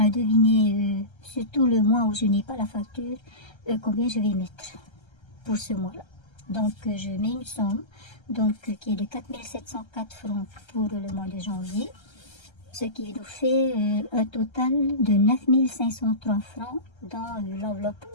à deviner, surtout le mois où je n'ai pas la facture, combien je vais mettre pour ce mois-là. Donc, je mets une somme qui est de 4 704 francs pour le mois de janvier, ce qui nous fait un total de 9 503 francs dans l'enveloppe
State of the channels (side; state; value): right; late; 1.3 ms